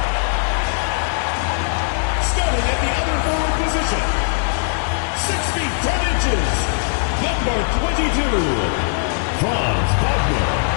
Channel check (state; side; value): silent; right; digital silence